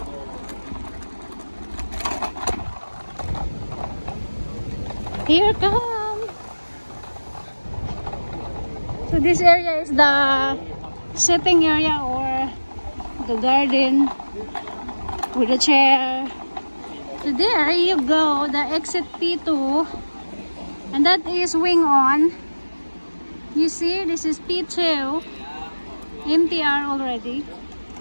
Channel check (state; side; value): inverted; both; correlation -1.00